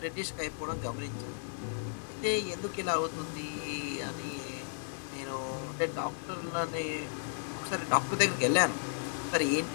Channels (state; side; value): silent; right; digital silence